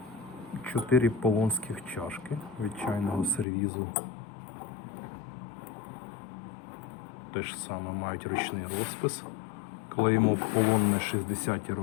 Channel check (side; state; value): right; drops out; at 3.5 s